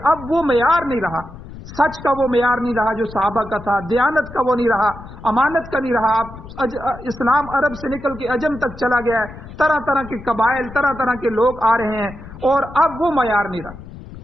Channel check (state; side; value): noise; left; rumble, 15 dB below the sound